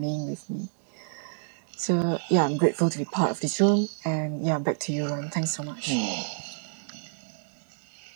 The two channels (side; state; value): left; silent; 59 dB below the other